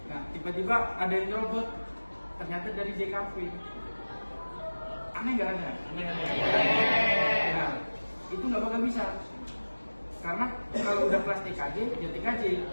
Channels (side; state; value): both; inverted; correlation -1.00